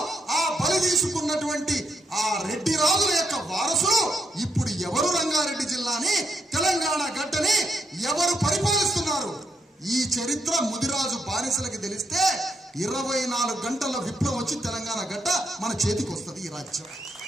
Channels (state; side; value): normal; both; correlation 0.78